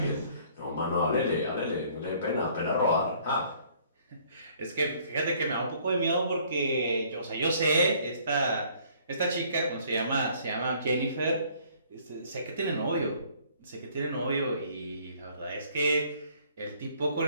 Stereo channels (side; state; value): both; inverted; correlation -0.59